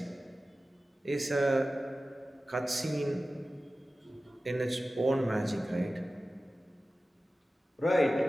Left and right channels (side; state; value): both; normal; correlation 0.95